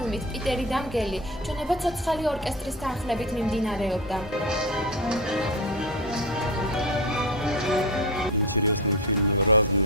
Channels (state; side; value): normal; both; correlation 0.22